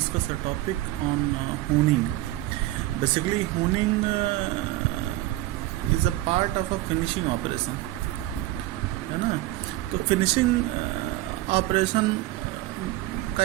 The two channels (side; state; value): left; quieter; 16.5 dB